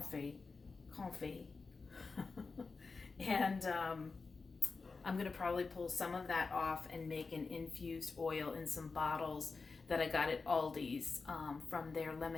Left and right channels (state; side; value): quieter; right; 4.3 dB